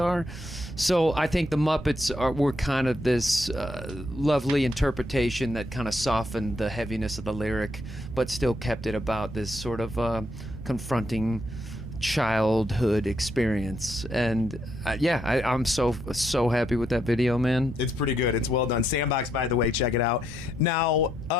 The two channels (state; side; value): normal; both; correlation 0.76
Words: So I think the Muppets were kind of this lovely interpretation that kind of softened the heaviness of the lyric, but still kept it about this sort of confronting childhood experience. And I'm so happy with that video, man. It's pretty good. It's well done. Sandbox, by the way, check it out. Now,